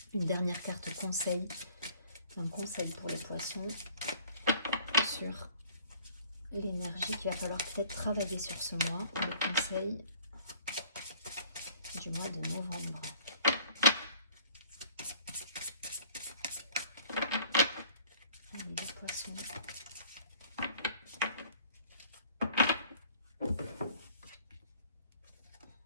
Une dernière carte conseil. Un conseil pour les poissons sur l'énergie qu'il va falloir peut-être travailler sur ce mois. Le conseil du mois de novembre. Allez, les poissons.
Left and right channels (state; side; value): inverted; both; correlation -0.54